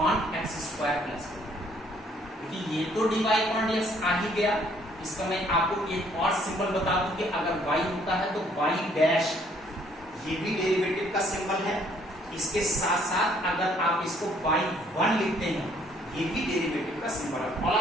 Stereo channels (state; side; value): normal; both; correlation 0.63